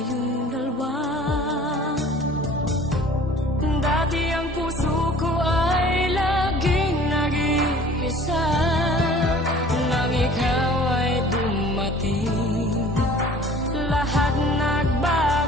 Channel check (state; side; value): normal; both; correlation 0.49